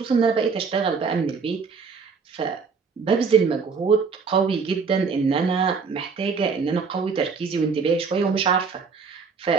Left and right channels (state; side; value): quieter; left; 5.3 dB